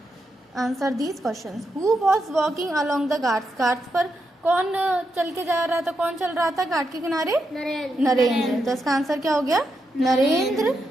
Answer these questions. Who was walking along the Ghats? Ghats पर कौन चल के जा रहा था, कौन चल रहा था घाट के किनारे? नरेंद्र। तो इसका आंसर क्या हो गया? Narendra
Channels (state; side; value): normal; both; correlation 0.84